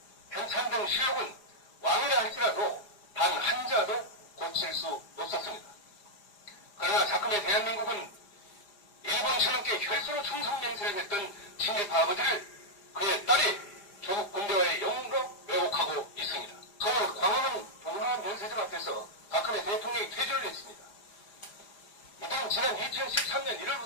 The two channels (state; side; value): late; right; 4.9 ms